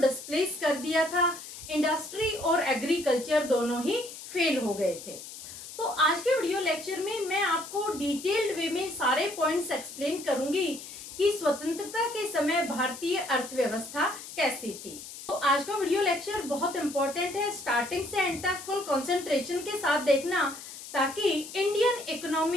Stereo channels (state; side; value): noise; left; hiss, 13 dB below the sound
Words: कर दिया था। इंडस्ट्री और एग्रीकल्चर दोनों ही फेल हो गए थे। तो आज के वीडियो लेक्चर में मैं आपको डिटेल्ड वे में सारे पॉइंट्स एक्सप्लेन करूंगी कि स्वतंत्रता के समय भारतीय अर्थव्यवस्था कैसी थी। तो आज का वीडियो लेक्चर बहुत इंपॉर्टेंट है, स्टार्टिंग से एंड तक फुल कंसंट्रेशन के साथ देखना ताकि Indian